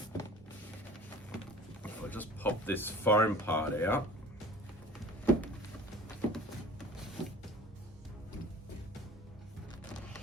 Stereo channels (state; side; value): normal; both; correlation 0.44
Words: If I just pop this foam part out.